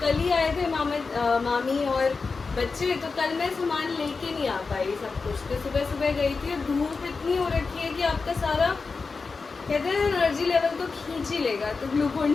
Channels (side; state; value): right; quieter; 4.5 dB